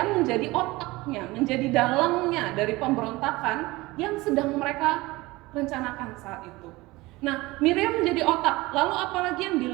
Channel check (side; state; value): left; quieter; 20.9 dB